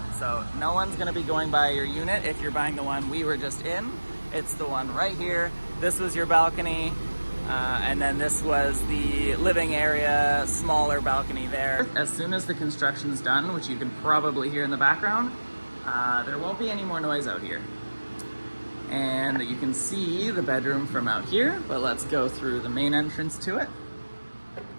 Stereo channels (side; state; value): both; inverted; correlation -1.00